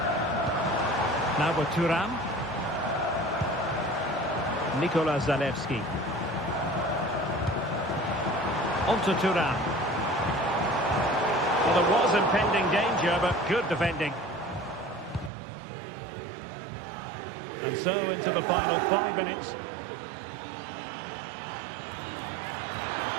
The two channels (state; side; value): drops out; left; at 15.3 s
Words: Now with Thuram. Nikola Zalewski. On to Thuram. Well, there was impending danger, but good defending. And so into the final 5 minutes.